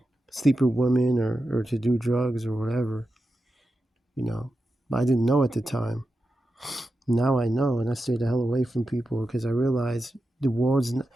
sleep with women, or to do drugs or whatever. But I didn't know at the time. Now I know, and I stay the hell away from people because I realize the world's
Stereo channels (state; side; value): normal; both; correlation 0.90